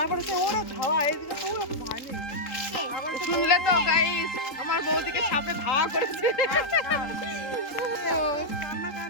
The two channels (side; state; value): right; late; 3.8 ms